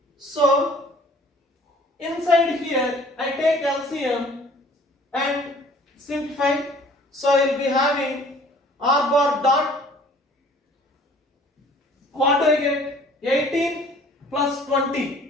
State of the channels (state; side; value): normal; both; correlation 0.53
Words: So inside here I take LCM and simplify. So I will be having r bar dot, what do I get? 18 plus